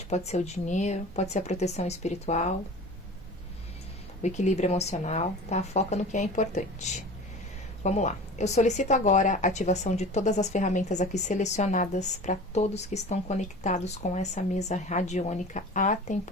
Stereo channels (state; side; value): normal; both; correlation 0.38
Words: pode ser o dinheiro, pode ser a proteção espiritual, o equilíbrio emocional, tá? Foca no que é importante. Vamos lá. Eu solicito agora a ativação de todas as ferramentas aqui selecionadas para todos que estão conectados com essa mesa radiônica